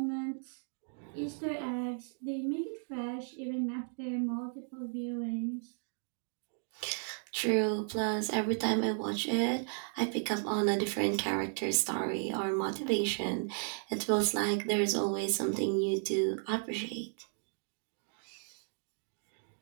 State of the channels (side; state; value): left; silent; 55 dB below the other